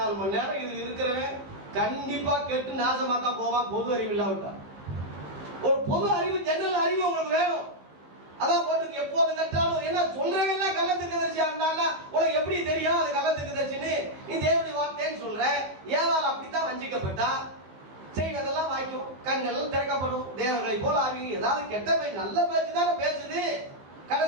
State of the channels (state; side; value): late; left; 16 ms